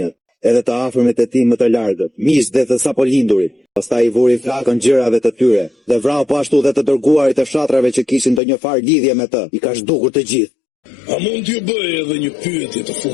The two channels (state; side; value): drops out; right; at 8.4 s